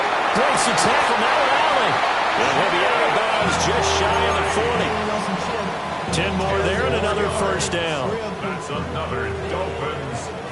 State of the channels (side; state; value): both; identical; correlation 1.00